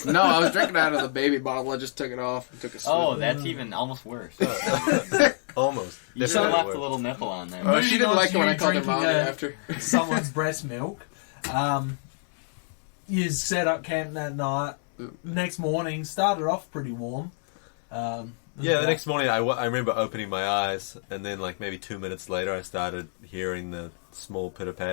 No, I was drinking out of the baby bottle. I just took it off and took a sip. Oh, that's even almost worse. Almost. You should have left Definitely a little nipple on there. Oh, she didn't like it when I called her Drinking mommy after. someone's breast milk. You set up camp that night. Next morning, started off pretty warm. Yeah, the next morning I remember opening my eyes, and then like maybe 2 minutes later I started hearing the small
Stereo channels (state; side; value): silent; right; digital silence